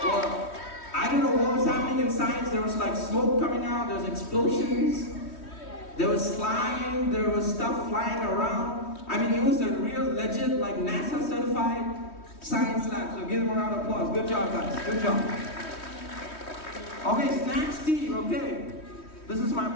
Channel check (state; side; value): late; right; 3.1 ms